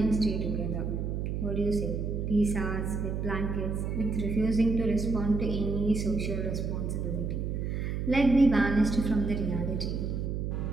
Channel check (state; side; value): noise; right; hum, 2 dB below the sound